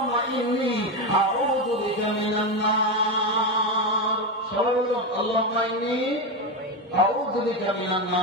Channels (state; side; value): normal; both; correlation 0.13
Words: ইন্নী আউযু বিকা মিনান নার। সবাই বলুন আল্লাহুম্মা ইন্নী আউযু বিকা মিনান